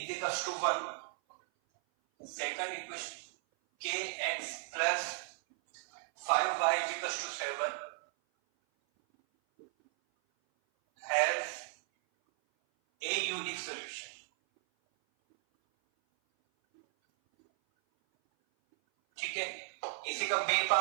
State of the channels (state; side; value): silent; left; 54 dB below the other